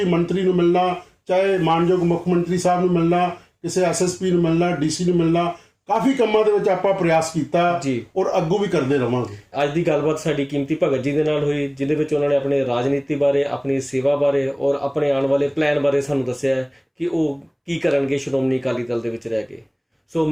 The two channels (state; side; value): identical; both; correlation 1.00